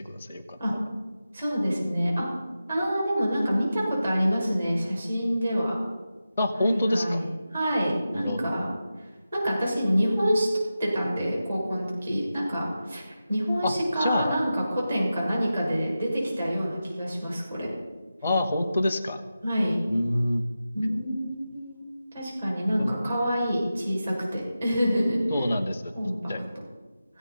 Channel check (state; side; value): inverted; both; correlation -0.92